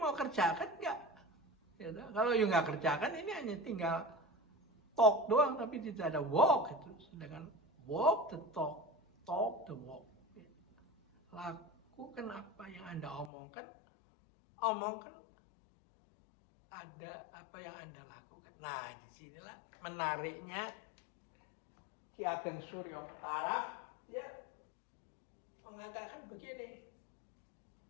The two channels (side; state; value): right; drops out; at 13.3 s